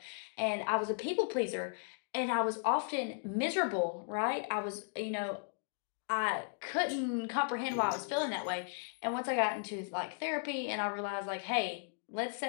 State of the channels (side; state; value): right; silent; digital silence